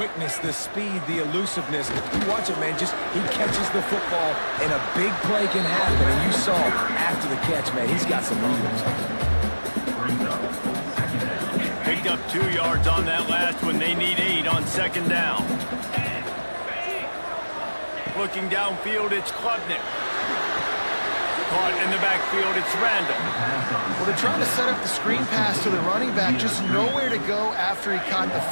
the speed, the elusiveness. You watch it, man. Just he catches the football, and a big play can happen. And you saw after the catch, man, he's got some movement. Picked up 2 yards on that last one. They need 8 on 2nd down. Looking downfield, it's Klubnik. Caught in the backfield, it's Randall. Well, they're trying to set up the screen pass to the running back, just nowhere to go after he caught the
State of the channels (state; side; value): inverted; both; correlation -1.00